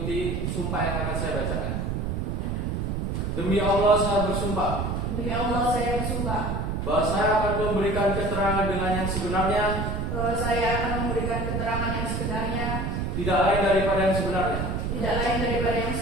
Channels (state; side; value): noise; right; rumble, 1 dB below the sound